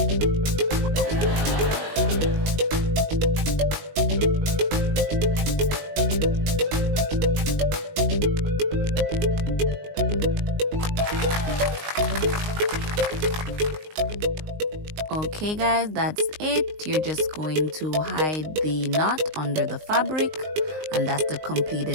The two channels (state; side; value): late; left; 19 ms